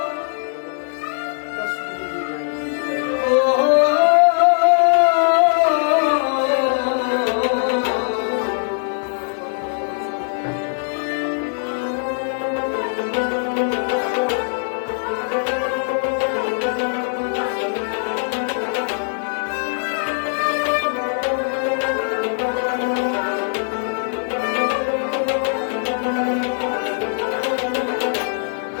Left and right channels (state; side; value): silent; right; digital silence